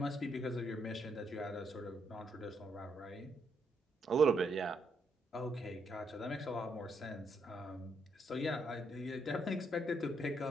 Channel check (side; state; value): both; normal; correlation 0.76